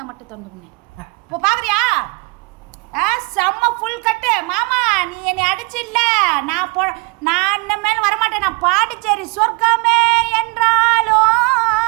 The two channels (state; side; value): quieter; left; 29.5 dB